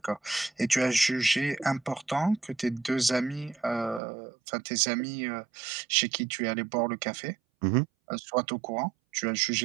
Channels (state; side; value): drops out; left; at 4.0 s